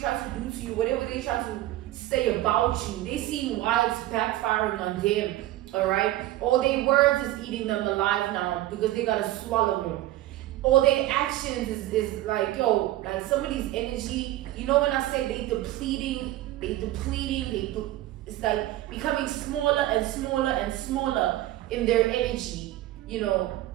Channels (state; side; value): quieter; left; 15.5 dB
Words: to do to you, whatever they try to say about you, they see why it's backfiring on them. All right, all their words is eating them alive now, because they gotta swallow them. All their actions is like, yo, like somebody's energy. You know, when I say they depleting, it's like becoming smaller and smaller and smaller in their energy. You know,